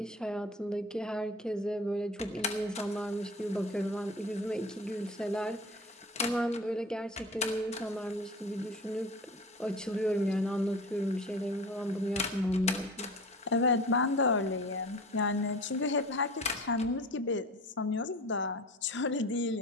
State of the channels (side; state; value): both; normal; correlation 0.37